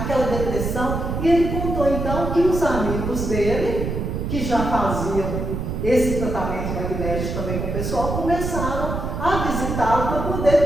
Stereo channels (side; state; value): right; noise; rumble, 3 dB below the sound